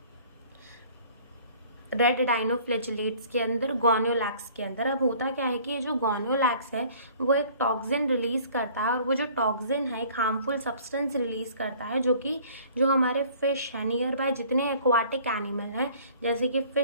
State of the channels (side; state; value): both; inverted; correlation -0.52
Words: रेड डाइनोफ्लैजिलेट्स के अंदर, गोनियोलैक्स के अंदर। अब होता क्या है कि ये जो गोनियोलैक्स है वो एक टॉक्सिन रिलीज करता है, और वो जो टॉक्सिन है एक हार्मफुल सब्सटेंस रिलीज करता है, जो कि जो हमारे फिश है, नियर बाय जितने एक्वाटिक एनिमल हैं जैसे कि